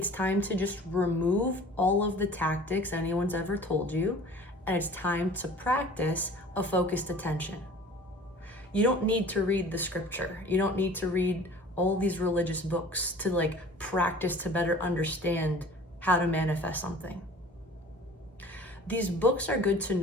time to just remove all of the tactics anyone's ever told you, and it's time to practice a focused attention. You don't need to read the scripture. You don't need to read all these religious books to like practice to better understand how to manifest something. These books are good to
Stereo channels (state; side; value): normal; both; correlation 0.45